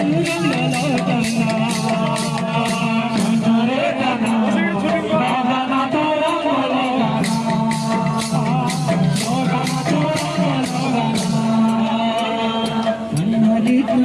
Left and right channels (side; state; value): both; identical; correlation 1.00